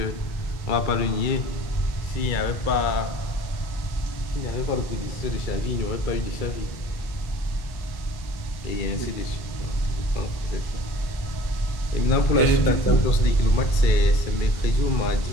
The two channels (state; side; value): late; right; 2.3 ms